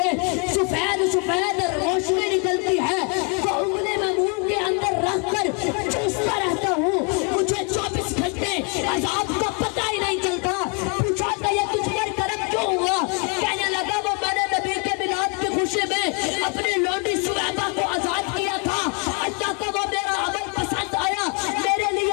سفید روشنی نکلتی ہے، وہ انگلی میں منہ کے اندر رکھ کر چوستا رہتا ہوں، مجھے 24 گھنٹے عذاب کا پتہ ہی نہیں چلتا۔ پوچھا کہ یہ تجھ پر کرم کیوں ہوا؟ کہنے لگا وہ میں نے نبی کے میلاد کی خوشی میں اپنے لونڈی سویبہ کو آزاد کیا تھا، اللہ کو وہ میرا عمل پسند آیا، میرے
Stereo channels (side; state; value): right; quieter; 34.8 dB